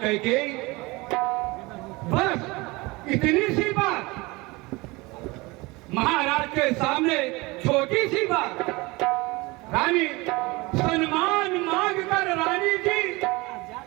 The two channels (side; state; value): left; quieter; 23.4 dB